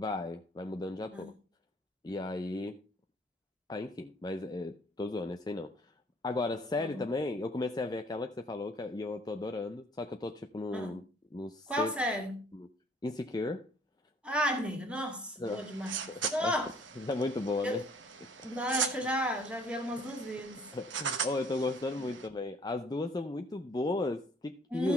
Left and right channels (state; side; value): normal; both; correlation 0.58